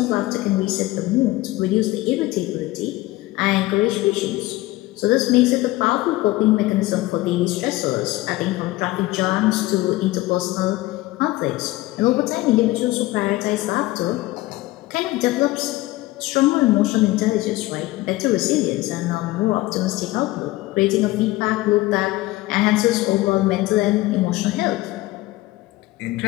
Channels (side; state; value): right; quieter; 18.6 dB